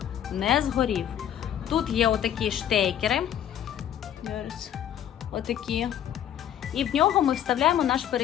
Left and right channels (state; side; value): quieter; right; 10.4 dB